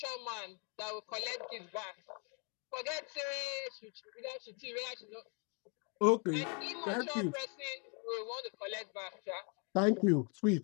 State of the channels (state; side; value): quieter; right; 35.3 dB